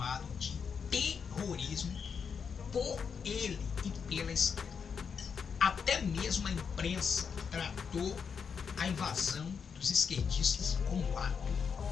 de terrorismo por ele e pela esquerda. Até mesmo a imprensa tratou a invasão dos esquerdistas como ato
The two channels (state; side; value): quieter; right; 6.3 dB